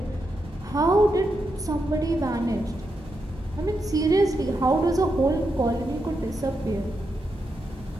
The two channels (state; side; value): normal; both; correlation 0.85